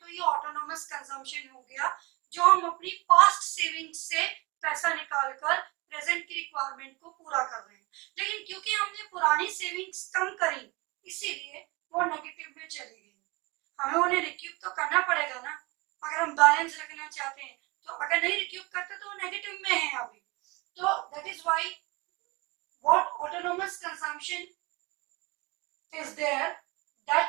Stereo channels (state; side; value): quieter; left; 25.2 dB